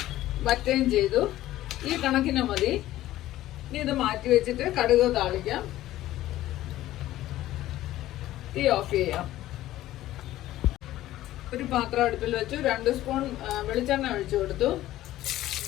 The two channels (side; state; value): right; quieter; 14.8 dB